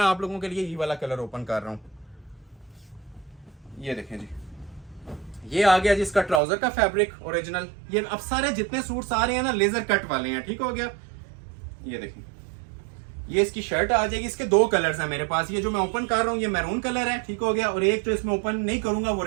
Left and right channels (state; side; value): drops out; left; at 6.4 s